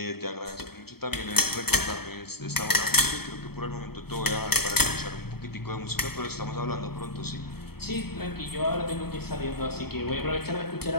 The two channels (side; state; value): right; late; 0.96 ms